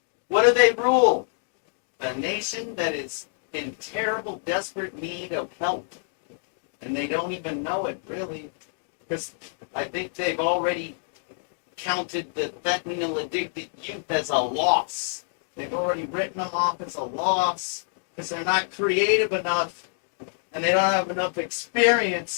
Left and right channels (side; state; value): right; silent; digital silence